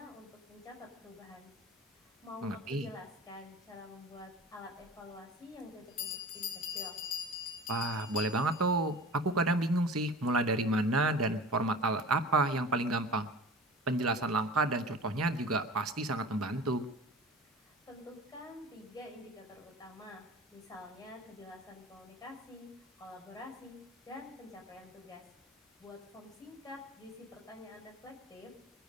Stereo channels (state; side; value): normal; both; correlation 0.39